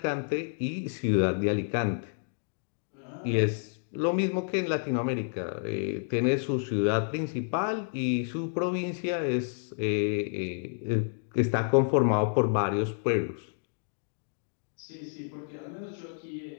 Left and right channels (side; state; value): right; silent; digital silence